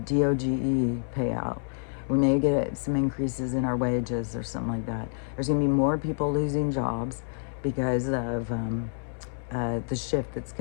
payout. We may get some increases in our wages or something like that. There's going to be more people losing jobs because of the shift that's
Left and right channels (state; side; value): silent; right; digital silence